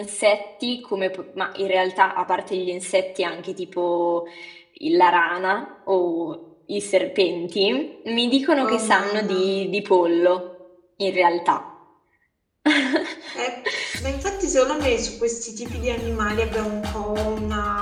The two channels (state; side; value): identical; both; correlation 1.00